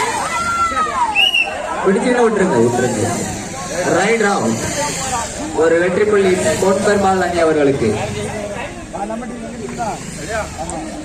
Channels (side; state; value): both; identical; correlation 1.00